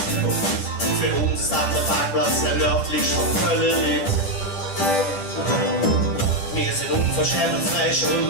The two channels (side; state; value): right; late; 10 ms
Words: Für uns ist das der Parkplatz, der nördlich von Köln liegt. Wir sind unverschämt und frech